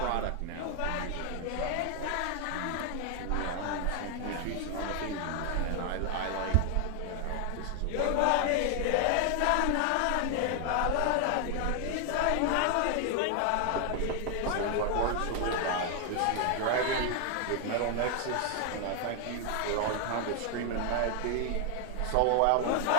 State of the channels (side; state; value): both; different; correlation 0.00